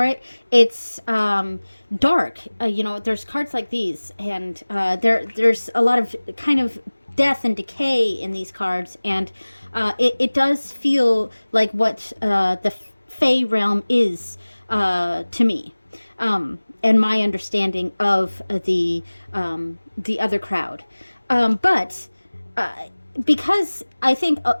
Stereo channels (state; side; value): inverted; both; correlation -1.00